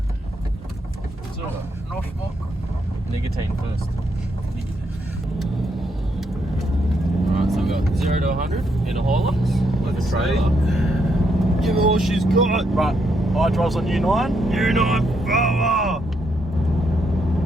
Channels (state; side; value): normal; both; correlation 0.77